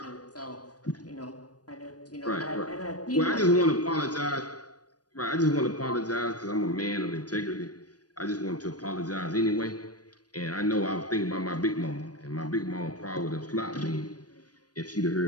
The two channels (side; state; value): right; late; 0.69 ms